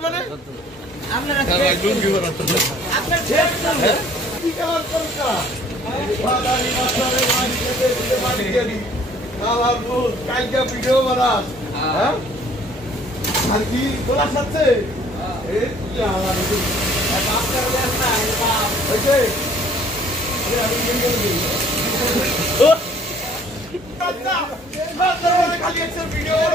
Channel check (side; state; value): both; normal; correlation 0.56